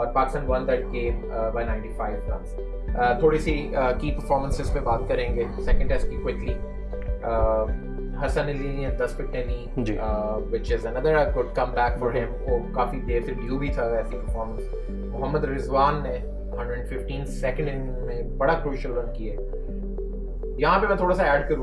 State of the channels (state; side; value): identical; both; correlation 1.00